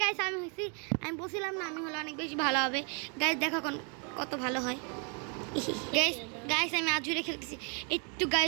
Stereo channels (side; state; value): left; quieter; 37.4 dB